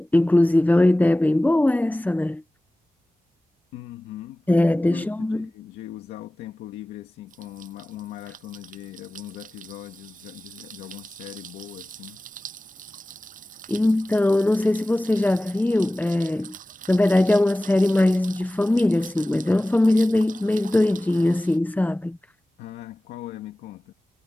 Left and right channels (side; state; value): both; normal; correlation 0.97